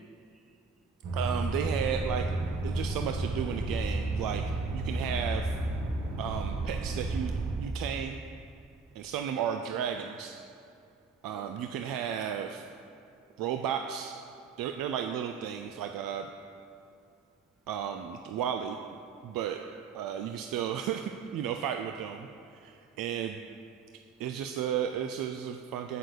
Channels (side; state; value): left; quieter; 5.4 dB